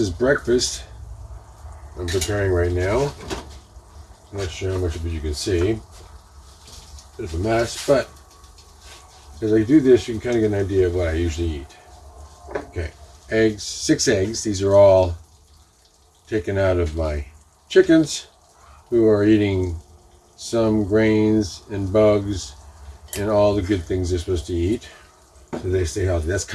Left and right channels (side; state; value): both; identical; correlation 1.00